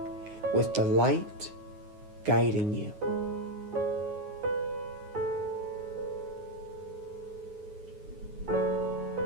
with the light guiding you.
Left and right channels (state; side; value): late; left; 9.5 ms